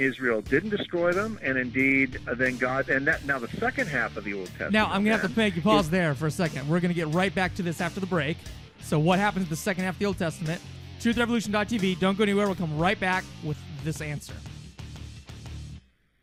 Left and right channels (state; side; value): identical; both; correlation 1.00